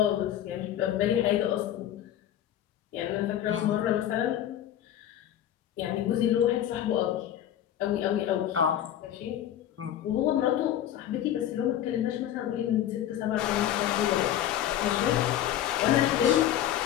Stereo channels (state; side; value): quieter; right; 11.4 dB